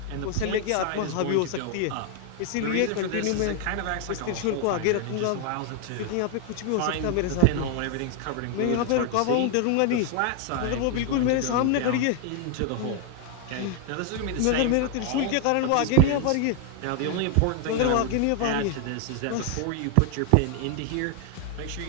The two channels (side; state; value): both; different; correlation 0.00